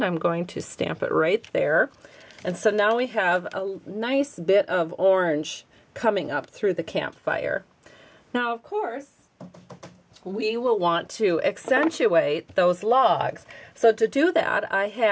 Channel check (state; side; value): identical; both; correlation 1.00